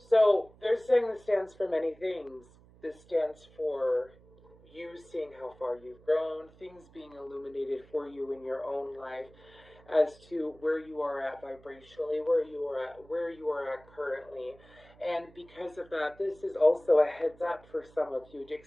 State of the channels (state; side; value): noise; right; hum, 25 dB below the sound